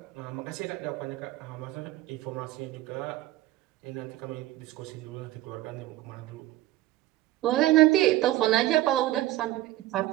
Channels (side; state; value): left; quieter; 16.0 dB